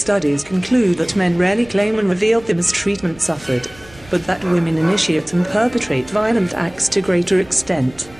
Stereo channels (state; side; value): noise; right; rumble, 24 dB below the sound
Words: conclude that men rarely claim and reveal the mistreatment suffered, but that women initiate and perpetrate violent acts to greater extent.